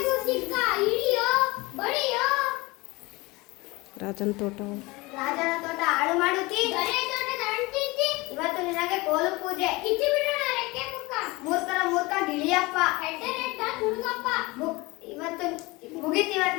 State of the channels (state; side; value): quieter; right; 23.0 dB